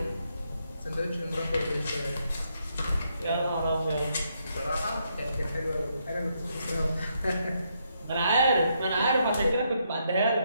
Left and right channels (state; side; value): inverted; both; correlation -0.77